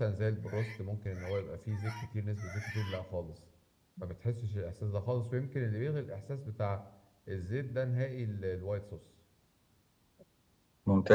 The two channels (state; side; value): identical; both; correlation 1.00